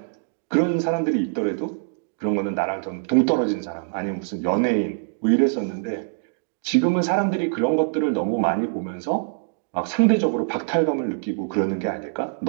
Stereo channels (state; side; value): silent; left; digital silence